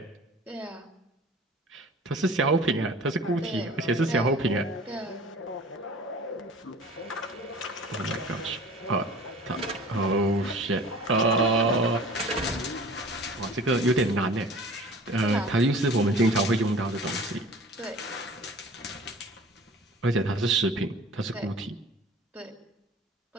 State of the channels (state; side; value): normal; both; correlation 0.44